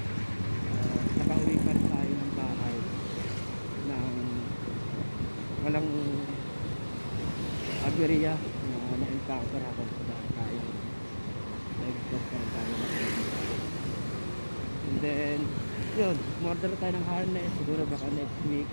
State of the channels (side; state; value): both; inverted; correlation -1.00